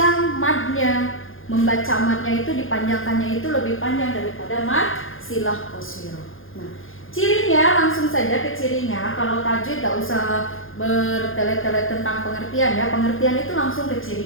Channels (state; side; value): late; right; 0.59 ms